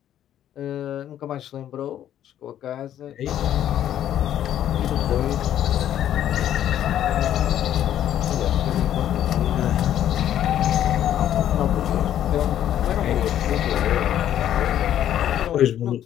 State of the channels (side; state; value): right; quieter; 11.1 dB